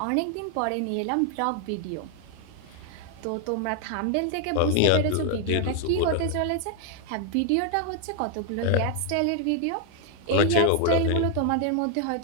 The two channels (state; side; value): different; both; correlation 0.00